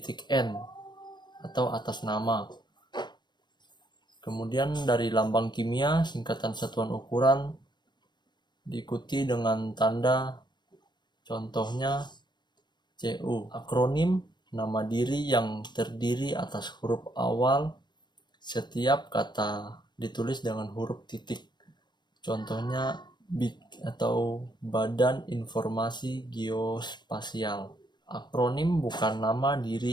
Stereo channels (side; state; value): right; late; 0.21 ms